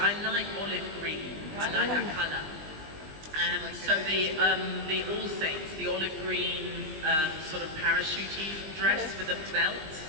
like olive green. I like that colour. So the All Saints, the olive green sort of parachute dress with the belt,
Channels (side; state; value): left; late; 20 ms